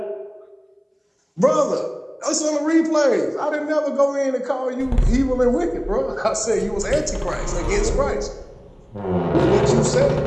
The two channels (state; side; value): identical; both; correlation 1.00